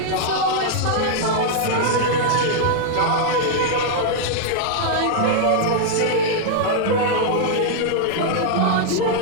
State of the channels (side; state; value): both; different; correlation -0.01